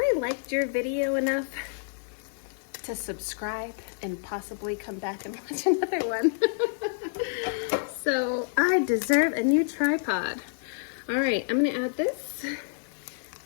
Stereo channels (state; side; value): silent; right; digital silence